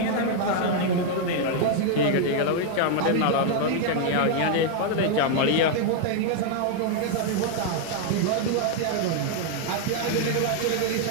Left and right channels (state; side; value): different; both; correlation 0.00